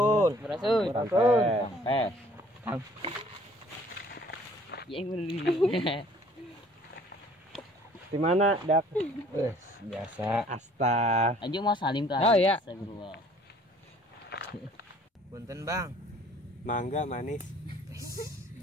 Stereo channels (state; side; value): normal; both; correlation 0.56